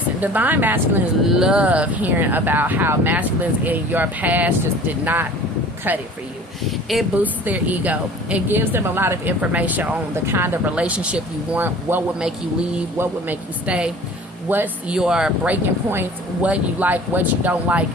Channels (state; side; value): normal; both; correlation 0.45